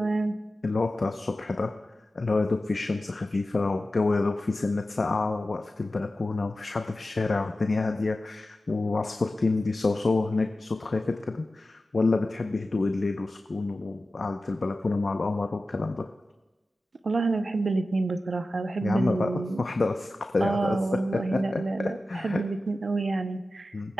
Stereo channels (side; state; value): both; normal; correlation 0.94